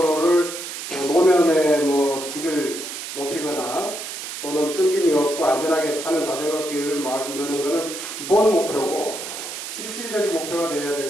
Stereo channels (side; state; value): right; noise; hiss, 8 dB below the sound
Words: 노면에 질을 높이거나 또는 끊김이 없고 안전하게 타는 자전거 길을 만드는 것은 기본 목표고 실질적인 목표가 되어야